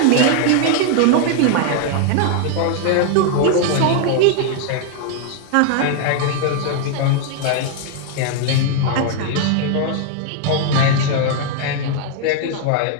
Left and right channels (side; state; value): both; different; correlation 0.00